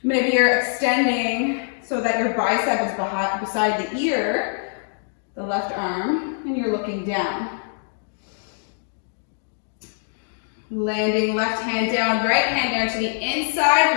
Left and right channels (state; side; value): silent; right; digital silence